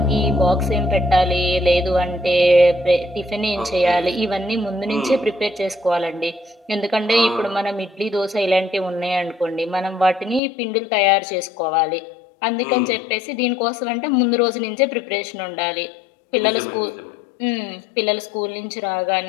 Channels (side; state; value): right; drops out; at 10.4 s